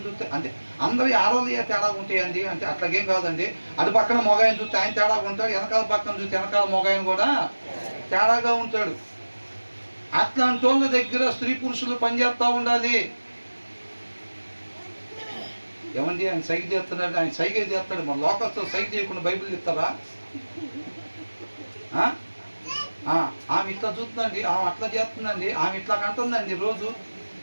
చూస్తే అంటే అందరి ఆరోగ్య తేడా ఉంటాయండి. అంటే అట్లాగేం కాదండి. అటు పక్కన మొగాయని చూస్తే ఆయన తేడా ఉంటాడు, వెనకాల పక్కన చూస్తే వెనకాల మొగాయని కూడా తేడాగా ఉంటాడు. అట్లాంటి వాళ్ళ దగ్గర స్త్రీ పురుషులు పనిచేస్తూ ఉండాలి. ఏమండి ఆయన సైగ చేస్తున్నాడు, ఆయన సైగే చేస్తాడు, మన లోకస్తో సైగ చేయకుండా బైబిల్ చెప్తారా? ఆమె ఇట్లా చూస్తుందండి, ఆమె అట్లా చేస్తుందండి, ఆమె ఇట్లా కంటుందండి రోజు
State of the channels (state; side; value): inverted; both; correlation -1.00